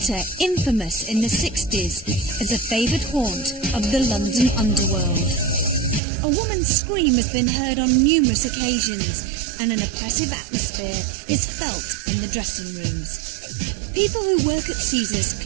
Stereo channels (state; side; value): drops out; left; at 6.0 s